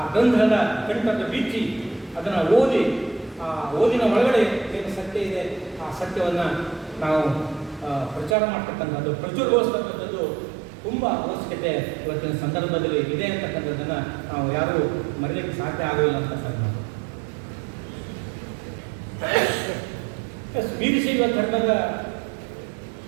ಗ್ರಂಥದ ಕಂಠದ ಬೀಚಿ ಅದನ್ನು ಓದಿ, ಆ ಓದಿನ ಒಳಗಡೆ ಏನು ಸತ್ಯ ಇದೆ ಆ ಸತ್ಯವನ್ನು ನಾವು ಪ್ರಚಾರ ಮಾಡ್ತಕ್ಕಂಥದ್ದು, ಪ್ರಚುರಗೊಳಿಸ್ತಕ್ಕಂಥದ್ದು ತುಂಬ ಅವಶ್ಯಕತೆ ಇವತ್ತಿನ ಸಂದರ್ಭದಲ್ಲಿ ಇದೆ ಅಂತಕ್ಕಂಥದ್ದನ್ನು ನಾವು ಯಾರೂ ಮರೀಲಿಕ್ಕೆ ಸಾಧ್ಯ ಆಗಲಿಲ್ಲ ಅಂತ ಸರ್. ವೀರಶೈವ ಧರ್ಮದ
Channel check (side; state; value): left; drops out; at 8.3 s